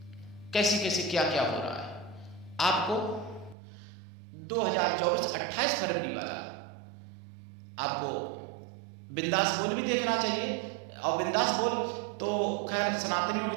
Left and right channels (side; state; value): left; drops out; at 3.6 s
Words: कैसे कैसे क्या क्या हो रहा है। आपको 2024 28 फरवरी वाला आपको बिंदास बोल भी देखना चाहिए। और बिंदास बोल तो खैर सनातनियों के